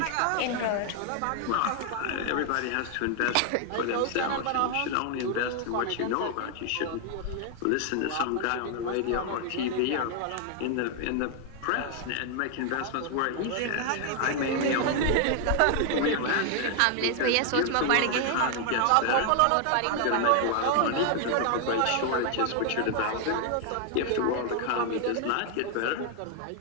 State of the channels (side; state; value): both; different; correlation 0.00